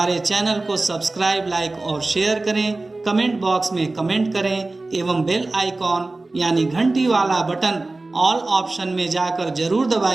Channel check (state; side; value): quieter; left; 3.2 dB